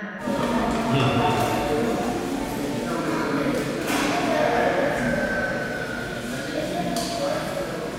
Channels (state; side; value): identical; both; correlation 1.00